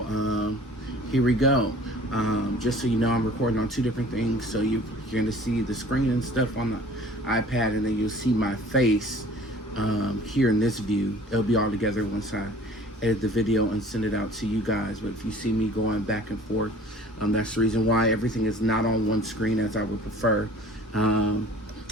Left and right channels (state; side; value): normal; both; correlation 0.49